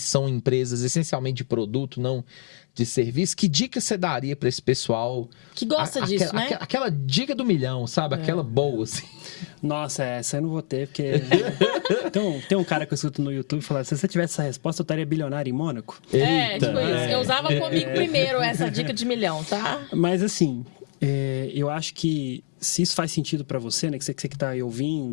empresas essencialmente de produto, não de serviço? Que dica você daria para esse pessoal que gosta disso, né? Aquela dica do milhão, sabe? Aquela boa, assim. Nossa, essa eu não vou ter, porque tem um cara que eu escuto no YouTube falando, se você tivesse essa resposta, eu estaria bilionário em Mônaco. Tipo isso. Eu usava comigo primeiro essa dica de milhão, tá? Mas assim, eu acho que se isso faz sentido para você, né? Que você que tá aí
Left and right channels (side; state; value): right; silent; digital silence